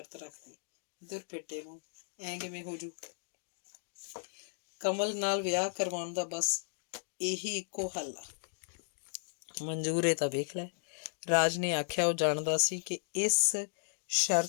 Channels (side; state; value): right; silent; digital silence